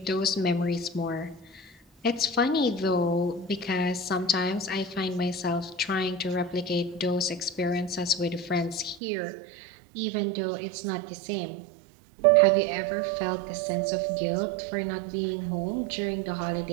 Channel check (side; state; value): left; drops out; at 9.0 s